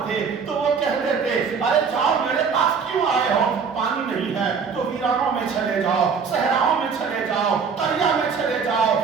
تو وہ کہہ دیتے ارے جاؤ میرے پاس کیوں آئے ہو, پانی نہیں ہے تو ویرانوں میں چلے جاؤ, صحراؤں میں چلے جاؤ, قریا میں چلے جاؤ,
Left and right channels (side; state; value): left; quieter; 5.9 dB